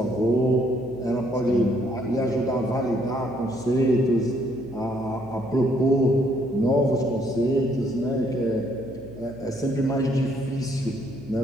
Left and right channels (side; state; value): right; noise; hum, 19 dB below the sound